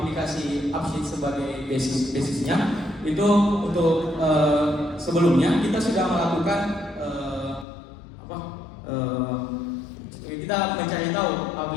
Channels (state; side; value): drops out; right; at 7.7 s